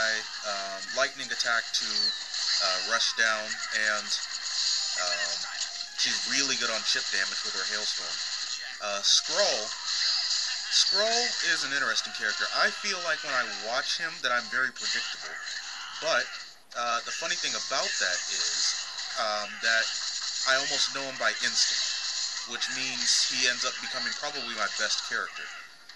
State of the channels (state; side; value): identical; both; correlation 1.00